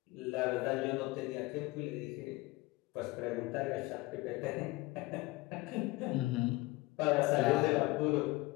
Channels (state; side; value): quieter; right; 21.3 dB